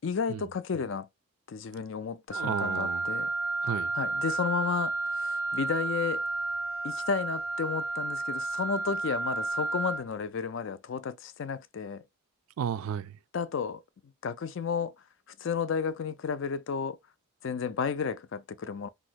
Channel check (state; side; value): normal; both; correlation 0.29